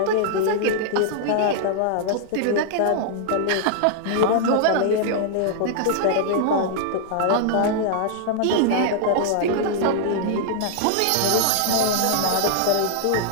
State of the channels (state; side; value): different; both; correlation -0.01